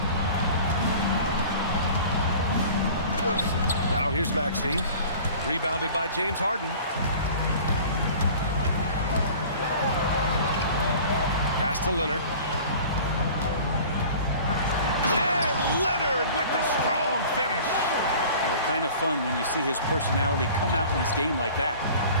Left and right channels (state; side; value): inverted; both; correlation -0.44